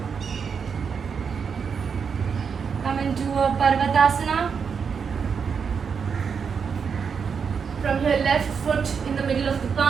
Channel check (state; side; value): quieter; left; 6.3 dB